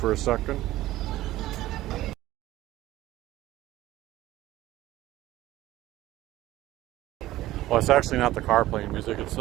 a second. Well, it's actually not the car playing music, it's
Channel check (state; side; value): quieter; left; 15.7 dB